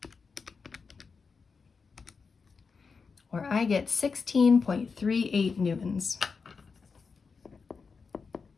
Or I get 16.38 newtons.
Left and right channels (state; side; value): quieter; right; 5.1 dB